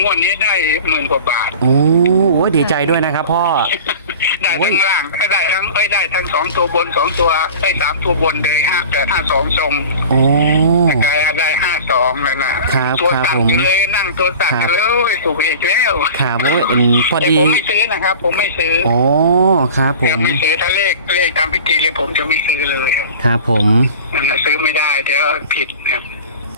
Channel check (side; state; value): both; inverted; correlation -0.38